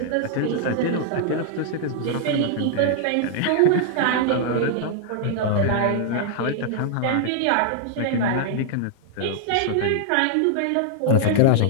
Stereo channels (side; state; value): both; different; correlation -0.01